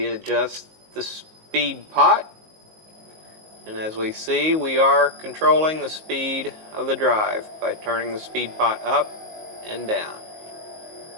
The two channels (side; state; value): left; late; 19 ms